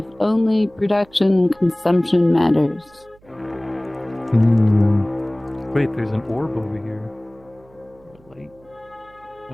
Only production and consumption matters. Hmm. Wait, there's an orb over here.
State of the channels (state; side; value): noise; right; hum, 29 dB below the sound